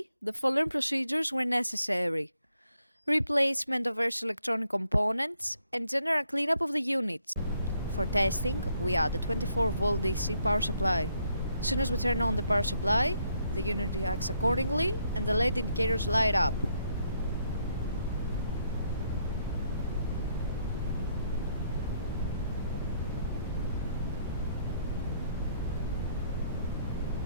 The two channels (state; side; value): inverted; both; correlation -0.73